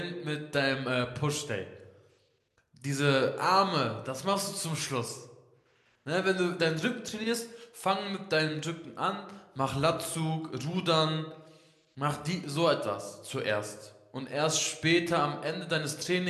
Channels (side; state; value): both; identical; correlation 1.00